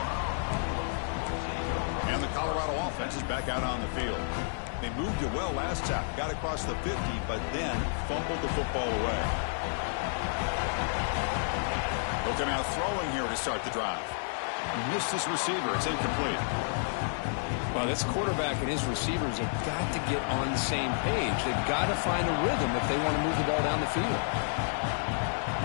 And the Colorado offense is back out on the field. They moved it well last time. Got across the 50, but then fumbled the football away. Looking out throwing here to start the drive. Missed his receiver. It's incomplete. Well, this quarterback and his receivers have got to get on the same page. They've got to find a rhythm if they want to move the ball down the field.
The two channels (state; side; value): silent; right; digital silence